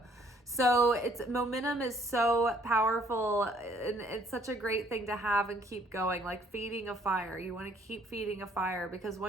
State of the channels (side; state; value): both; normal; correlation 0.63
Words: So momentum is so powerful, and it's such a great thing to have and keep going, like feeding a fire. You want to keep feeding a fire, because